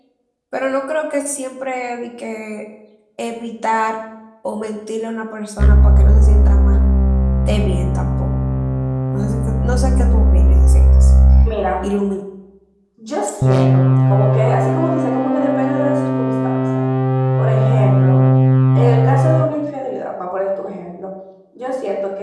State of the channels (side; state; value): both; identical; correlation 1.00